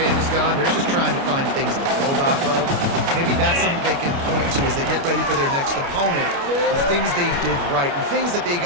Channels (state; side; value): late; left; 29 ms